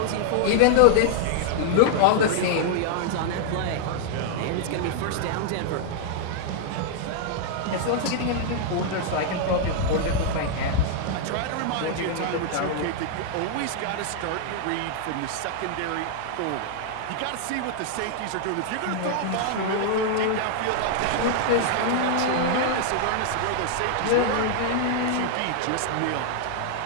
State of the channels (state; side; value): different; both; correlation -0.01